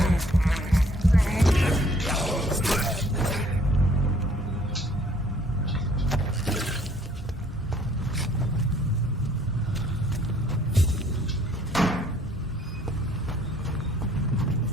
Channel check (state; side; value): normal; both; correlation 0.60